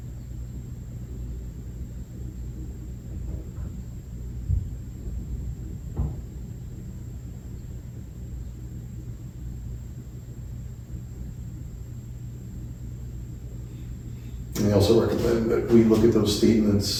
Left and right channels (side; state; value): both; identical; correlation 1.00